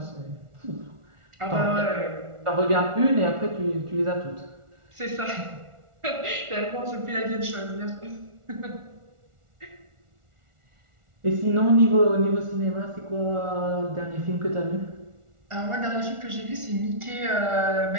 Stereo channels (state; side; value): late; left; 1.4 ms